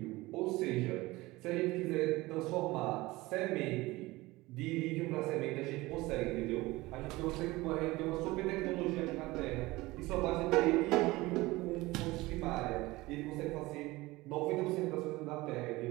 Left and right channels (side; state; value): left; quieter; 20.4 dB